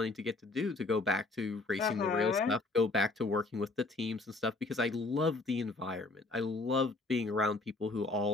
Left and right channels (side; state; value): right; quieter; 3.4 dB